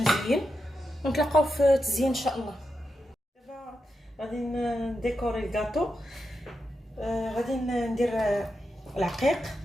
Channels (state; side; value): normal; both; correlation 0.87